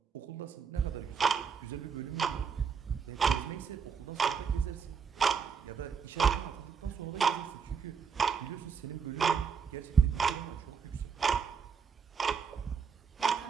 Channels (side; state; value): left; quieter; 6.3 dB